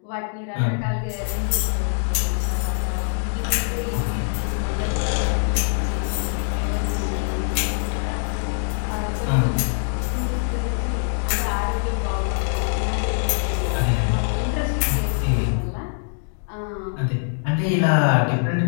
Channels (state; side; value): silent; right; digital silence